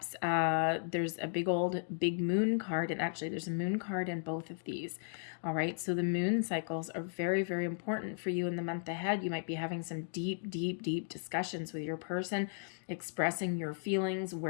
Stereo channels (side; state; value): right; silent; digital silence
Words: there's a big moon card, and actually there's a moon card in both of these. All right, so the moon cycles are very, very important for you in the month ahead. You might be having some deep, deep, deep discussions with your person, expressing your feelings.